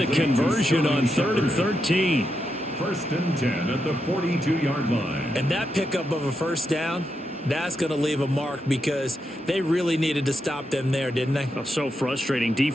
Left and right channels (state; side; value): normal; both; correlation 0.84